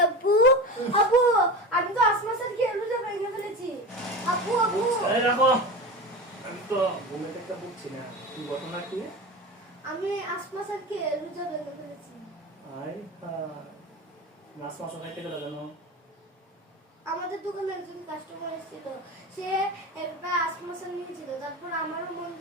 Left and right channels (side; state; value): both; normal; correlation 0.27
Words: আব্বু? আব্বু আমি তো আসমাসের খেয়ে রোজা ভেঙে ফেলেছি। আব্বু আব্বু এই রাখো, আমি তো ঘুমে থেকে বুঝছি না কি ঘটনা কি। আমি আসমাসের খেয়ে রোজা ভেঙে ফেলেছি। আই মাছ খাইতে গেল কেন? আমাদের দোকানে একজন কাস্টমার এসেছিল, সে একটা আসমাসের নিয়েছিল, তারপর আমারও মন